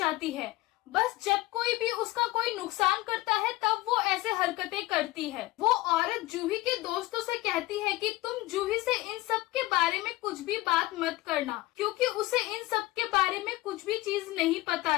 है। बस जब कोई भी उसका कोई नुकसान करता है तब वो ऐसे हरकतें करती है। वो औरत जूही के दोस्तों से कहती है कि तुम जूही से इन सब के बारे में कुछ भी बात मत करना, क्योंकि उसे इन सब के बारे में कुछ भी चीज नहीं पता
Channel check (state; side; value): quieter; right; 18.9 dB